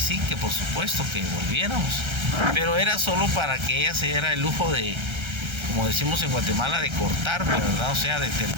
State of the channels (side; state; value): left; late; 1.3 ms